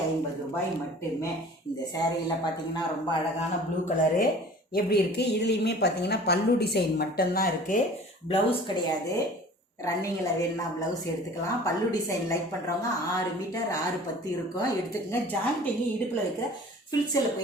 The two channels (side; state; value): both; normal; correlation 0.45